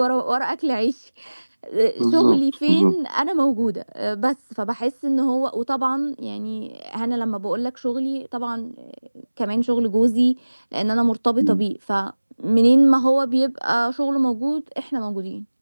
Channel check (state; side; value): inverted; both; correlation -1.00